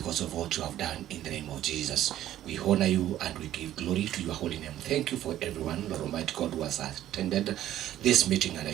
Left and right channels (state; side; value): quieter; left; 12.7 dB